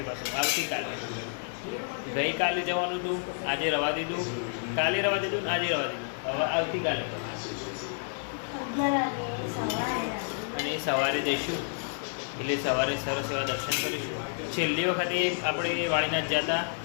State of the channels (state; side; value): silent; right; 58 dB below the other